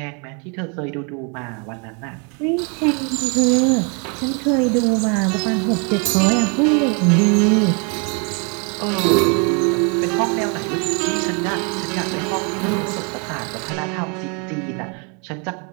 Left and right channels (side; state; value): left; quieter; 35.4 dB